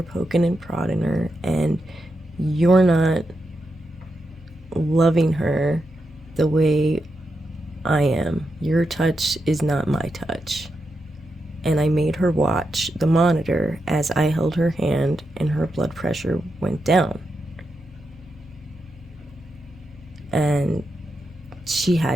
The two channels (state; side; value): normal; both; correlation 0.86